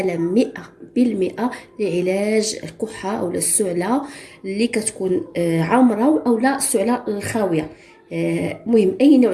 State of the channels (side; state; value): both; identical; correlation 1.00